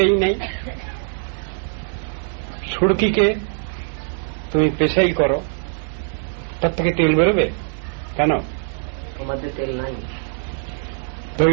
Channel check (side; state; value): left; silent; digital silence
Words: নেই। সুরকিকে তুমি পেশাই করো, তার থেকে তেল বেরোবে কেন? তেল নাই।